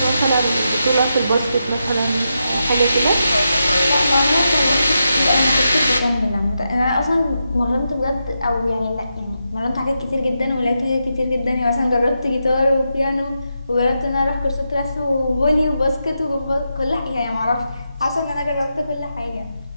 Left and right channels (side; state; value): both; inverted; correlation -0.86